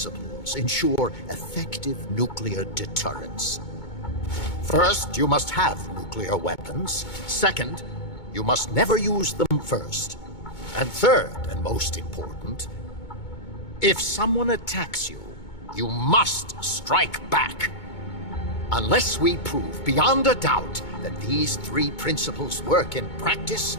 ensure effective nuclear deterrence. First, you must have nuclear weapons. Second, you must never use them first. And third, and most important, if someone attacks you, you must strike back. Unless we prove beyond a doubt that these 3 principles work in practice,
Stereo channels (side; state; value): right; late; 2.2 ms